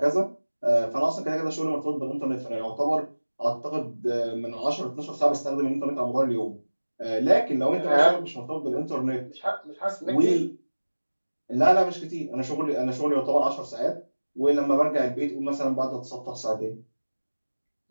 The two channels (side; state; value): both; inverted; correlation -1.00